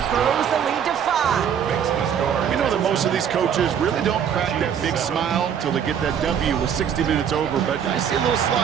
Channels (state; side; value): quieter; left; 8.3 dB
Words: throws the lead to 5. We know that most of these coaches really don't crack that big smile until they get that W with 60 minutes over, but I see a little